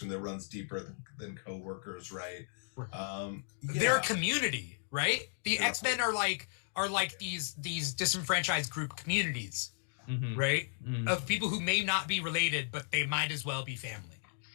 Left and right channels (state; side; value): silent; right; digital silence